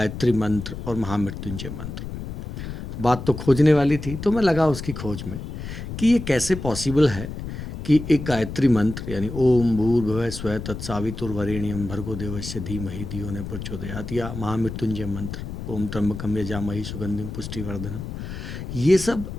मंत्र और महामृत्युंजय मंत्र। बात तो खोजने वाली थी, तो मैं लगा उसकी खोज में कि ये कैसे पॉसिबल है कि एक गायत्री मंत्र यानी ओम भूर्भुवः स्वः तत्सवितुर्वरेण्यं भर्गो देवस्य धीमहि धियो न प्रचोदयात् या महामृत्युंजय मंत्र ओम त्र्यंबकम यजामहे सुगंधिम पुष्टिवर्धनम, ये सब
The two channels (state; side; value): noise; left; rumble, 8 dB below the sound